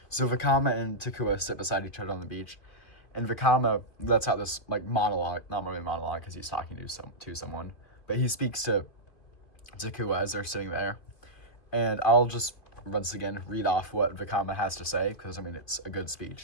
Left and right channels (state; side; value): late; right; 2.5 ms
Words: So Vakama and Takua sit beside each other on the beach, and Vakama lets out this like monologue, not really monologue because he's talking to someone, but he speaks to Takua as they're sitting there. And I'll just once again read off what Vakama has to say, because I mean it's a good